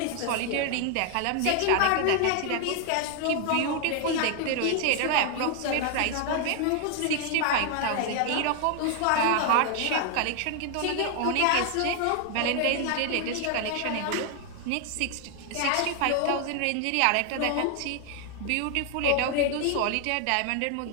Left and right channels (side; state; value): both; different; correlation 0.00